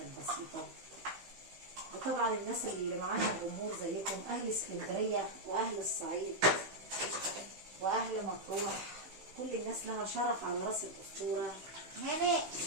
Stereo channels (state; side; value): late; left; 16 ms